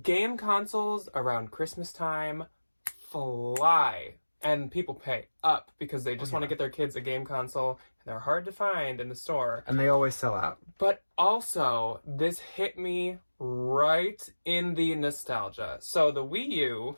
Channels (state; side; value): inverted; both; correlation -1.00